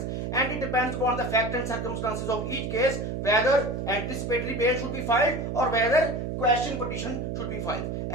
and it depends upon the fact and circumstances of each case whether anticipatory bail should be filed or whether quashing petition should be filed.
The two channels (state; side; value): noise; right; hum, 3 dB below the sound